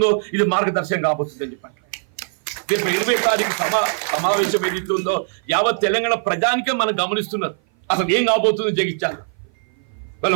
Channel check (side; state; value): left; silent; 57 dB below the other